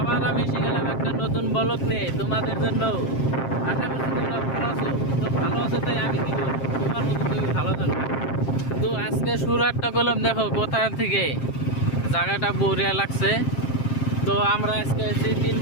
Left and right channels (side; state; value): right; late; 7.5 ms